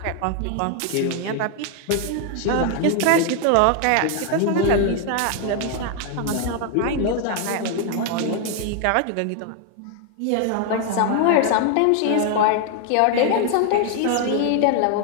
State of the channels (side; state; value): both; different; correlation 0.00